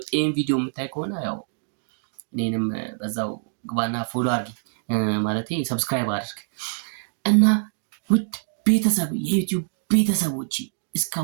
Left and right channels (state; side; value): silent; left; digital silence